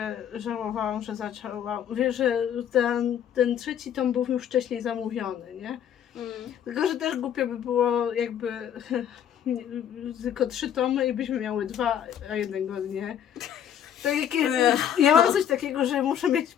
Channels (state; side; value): quieter; right; 9.4 dB